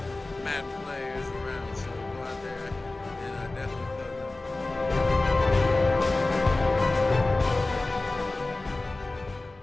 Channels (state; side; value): quieter; right; 3.1 dB